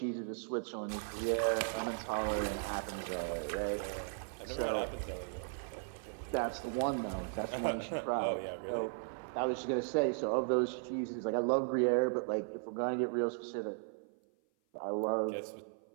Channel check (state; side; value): silent; left; 53 dB below the other